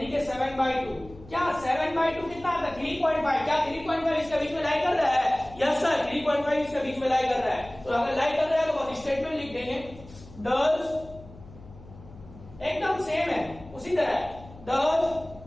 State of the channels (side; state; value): left; noise; hum, 19 dB below the sound